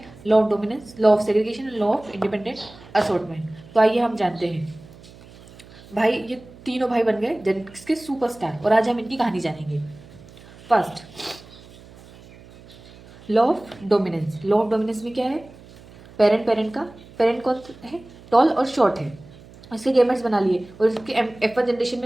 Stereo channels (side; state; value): right; noise; hum, 21 dB below the sound